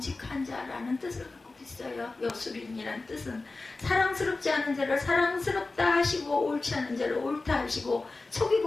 자라는 뜻을 갖고 있어요. 여수룬이라는 뜻은 사랑스럽지 않은 자를 사랑스럽다 하시고 옳지 않은 자를 옳다 하시고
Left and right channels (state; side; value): quieter; right; 3.5 dB